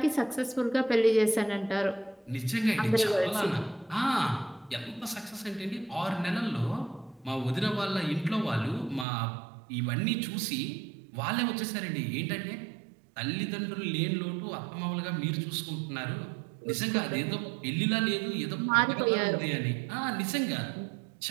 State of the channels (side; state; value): left; drops out; at 9.1 s